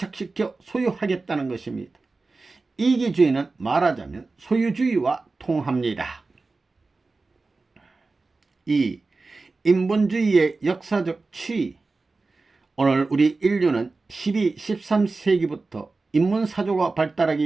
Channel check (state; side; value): quieter; left; 3.7 dB